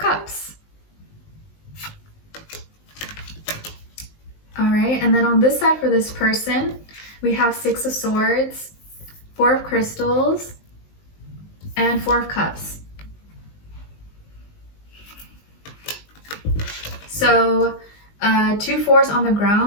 All right, and then on this side for this person, we have 6 of Swords, 4 of Crystals, and 4 of Cups. So 2 4s on the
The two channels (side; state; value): right; late; 19 ms